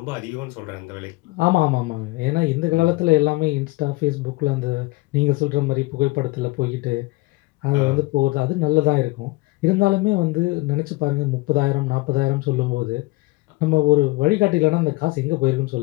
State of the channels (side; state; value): right; quieter; 22.7 dB